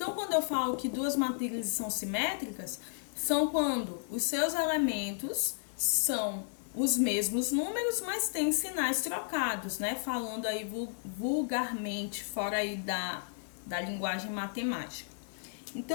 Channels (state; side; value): silent; right; digital silence